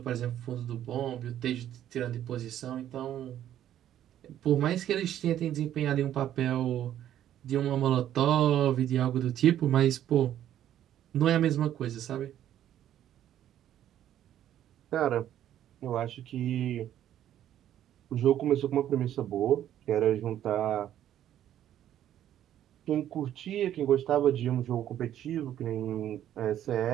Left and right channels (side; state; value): left; quieter; 11.4 dB